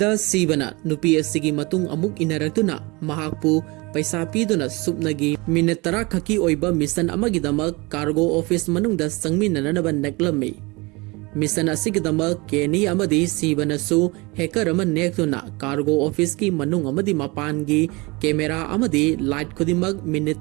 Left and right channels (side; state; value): left; quieter; 25.4 dB